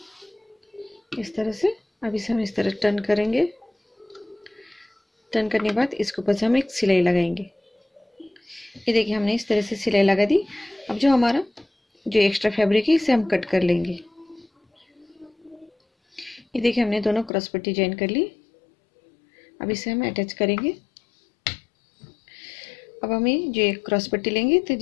इस तरह से अब इसे हम इस तरह टर्न करेंगे। टर्न करने के बाद इसके ऊपर से हम एक सिलाई लगाएंगे। ये देखिए हमने इस तरह से सिलाई लगा दी। अब जो हमारा जो एक्स्ट्रा फैब्रिक है इसे हम कट कर लेंगे। ये देखिए हमने दोनों क्रॉस पट्टी ज्वाइन कर ली। अब इसे हम अटैच करेंगे। अब हमें जो एक क्रॉस पट्टी लेंगे तो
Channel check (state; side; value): drops out; right; at 17.3 s